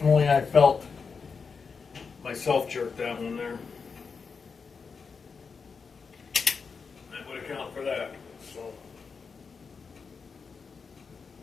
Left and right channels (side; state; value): right; quieter; 5.3 dB